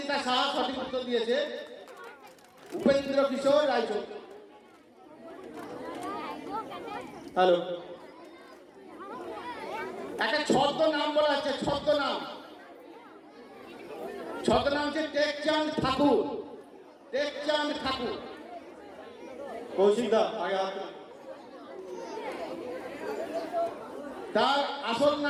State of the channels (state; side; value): identical; both; correlation 1.00